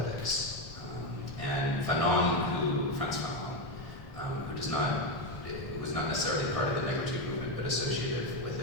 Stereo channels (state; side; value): normal; both; correlation 0.09